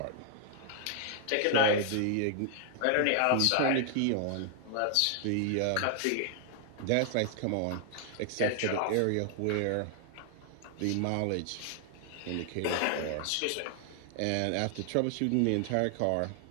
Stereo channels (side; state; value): both; different; correlation 0.00